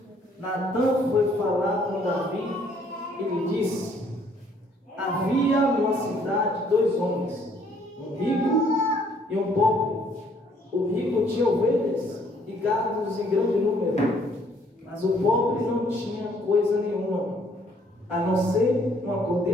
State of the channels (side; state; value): both; normal; correlation 0.63